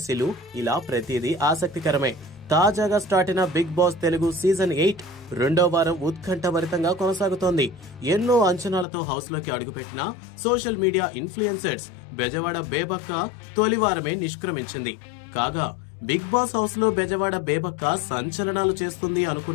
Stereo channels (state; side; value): drops out; right; at 8.8 s